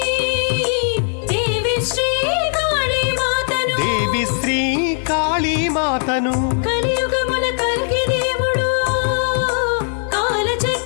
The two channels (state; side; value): silent; right; 65 dB below the other